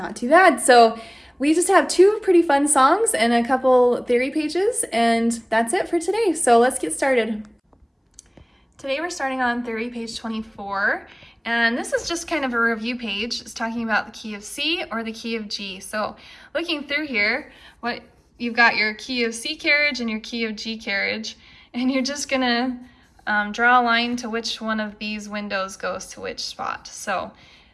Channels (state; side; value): identical; both; correlation 1.00